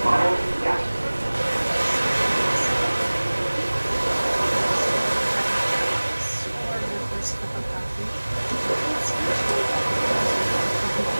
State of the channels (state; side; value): inverted; both; correlation -1.00